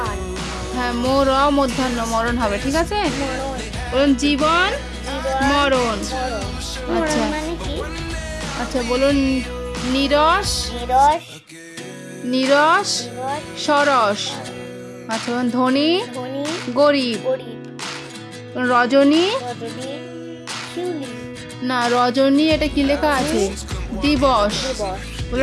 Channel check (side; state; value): both; identical; correlation 1.00